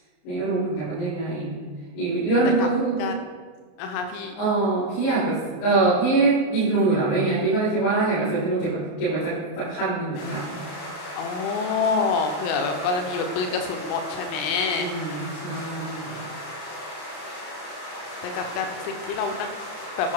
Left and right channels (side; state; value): right; late; 33 ms